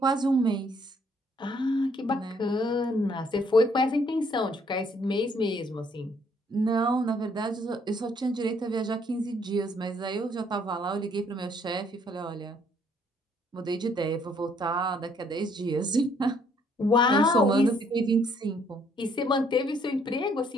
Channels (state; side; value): normal; both; correlation 0.66